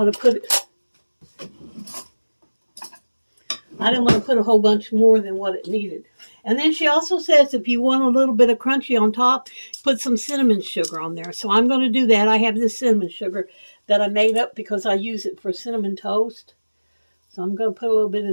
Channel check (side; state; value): both; inverted; correlation -1.00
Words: to put it. I didn't want to put a whole bunch more than what it needed. And then she also says if you want a little bit of crunchy on top, put some cinnamon sugar on there. So I'm going to do that. I have this cinnamon sugar that I made up because I use it for cinnamon toast. So I'm going to put a little bit